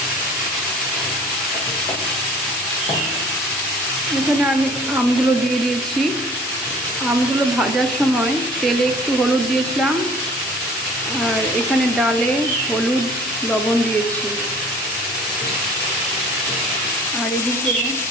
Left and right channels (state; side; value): normal; both; correlation 0.50